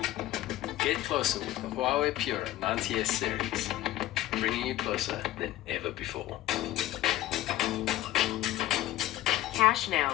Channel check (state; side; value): quieter; right; 14.9 dB